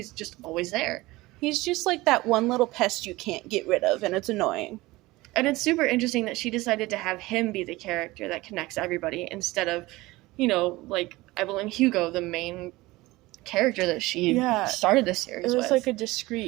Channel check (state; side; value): quieter; left; 20.0 dB